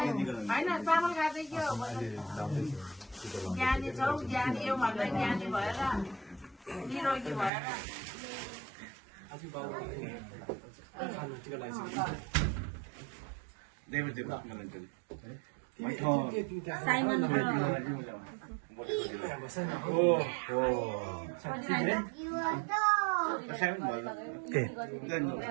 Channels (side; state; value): left; drops out; at 7.5 s